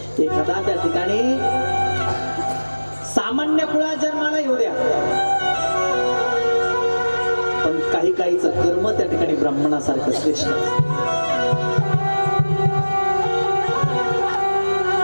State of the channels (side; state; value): both; inverted; correlation -1.00